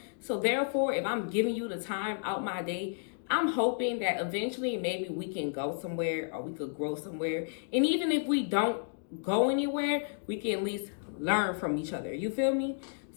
So therefore, if I'm giving you the time out my day, I'm hoping that eventually maybe we can go somewhere or we could grow somewhere. And even if we don't go anywhere, we can at least learn from each other. You feel me?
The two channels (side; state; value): right; silent; digital silence